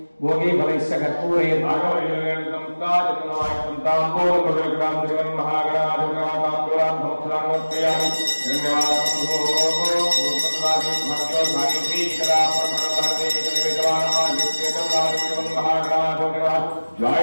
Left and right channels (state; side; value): inverted; both; correlation -1.00